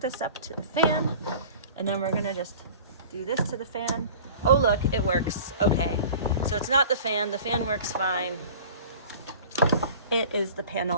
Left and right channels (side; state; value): both; inverted; correlation -0.43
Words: this up to the fan, and then we're gonna just do this to the fan. Oh look, it works. Okay, so it's not the fan works fine. It is the